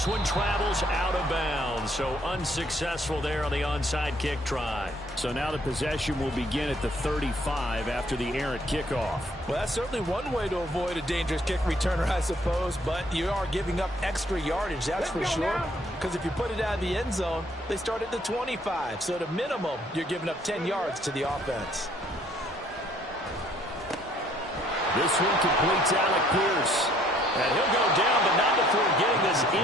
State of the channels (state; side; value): normal; both; correlation 0.63